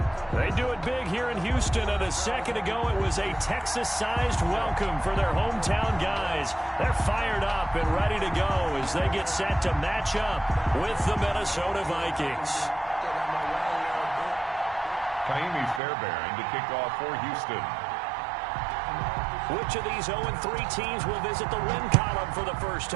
They do it big here in Houston, and a second ago it was a Texas-sized welcome for their hometown guys. They're fired up and ready to go as they get set to match up with the Minnesota Vikings. Kaimi Fairbairn to kick off for Houston. Which of these 0-3 teams will visit the win column for the first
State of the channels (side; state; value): left; drops out; at 15.8 s